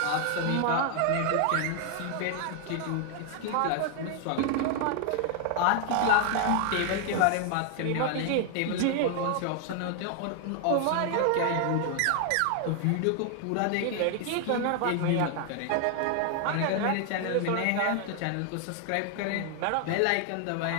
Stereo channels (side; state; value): both; different; correlation 0.00